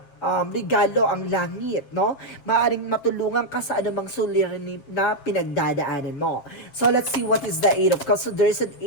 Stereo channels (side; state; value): right; late; 7.4 ms